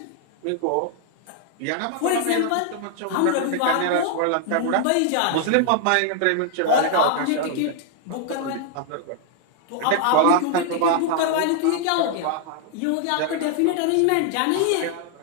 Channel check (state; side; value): different; both; correlation 0.00